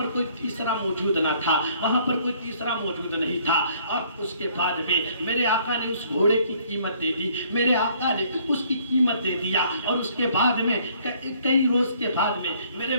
کوئی تیسرا موجود نہ تھا، وہاں پر کوئی تیسرا موجود نہیں تھا۔ اور اس کے بعد میں میرے آقا نے اس گھوڑے کی قیمت دے دی، میرے آقا نے اس کی قیمت دے دیا، اور اس کے بعد میں کئی روز کے بعد میں میرے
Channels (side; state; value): both; inverted; correlation -0.62